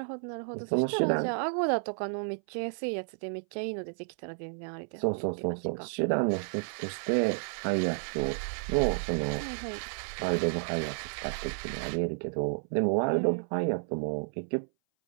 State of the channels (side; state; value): left; silent; 57 dB below the other